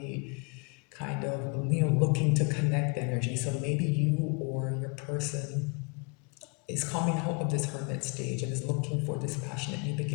kind of, looking to connect energy. So maybe you or your person is coming out of this Hermit stage and is looking for this passionate new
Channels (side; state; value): right; quieter; 33.1 dB